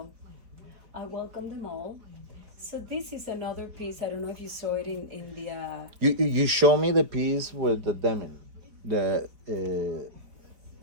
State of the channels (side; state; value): left; late; 4.6 ms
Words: I welcome them all. So this is another piece. I don't know if you saw it in the. You show me the piece with the denim, the